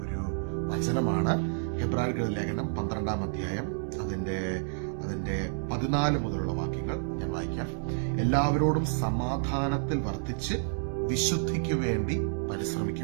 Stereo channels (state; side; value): silent; left; 58 dB below the other